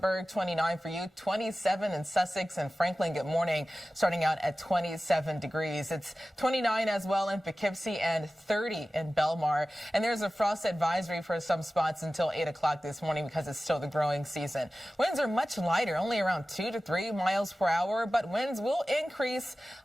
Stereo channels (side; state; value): both; normal; correlation 0.96